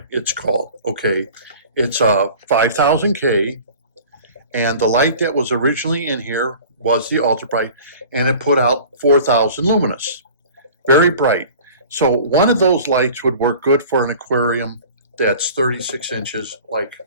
it's called. Okay, it's a 5000K, and the light that was originally in here was the ultra bright, and it put out 4000 luminous, very bright. So one of those lights would work good for an aquarium that's 36 inches, like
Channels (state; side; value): inverted; both; correlation -0.43